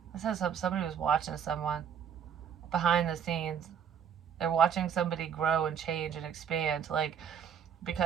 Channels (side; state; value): left; quieter; 8.2 dB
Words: This says somebody was watching someone behind the scenes. They're watching somebody grow and change and expand, like,